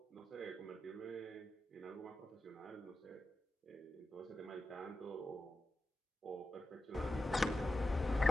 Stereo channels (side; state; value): both; normal; correlation 0.91